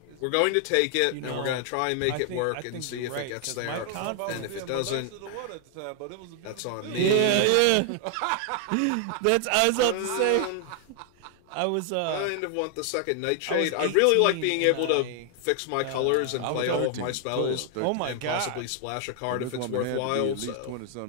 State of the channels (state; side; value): different; both; correlation 0.00